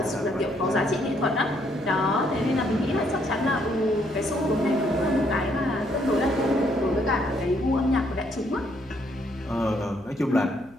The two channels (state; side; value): noise; left; hum, 26 dB below the sound